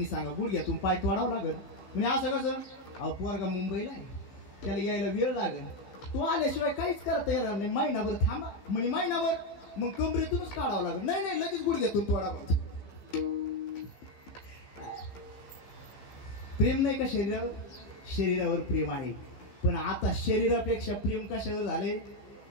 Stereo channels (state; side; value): late; right; 15 ms